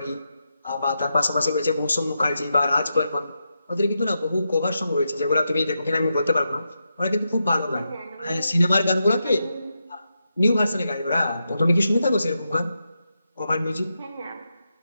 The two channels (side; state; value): both; inverted; correlation -0.86